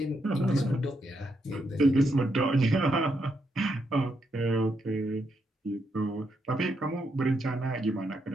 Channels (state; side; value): normal; both; correlation 0.80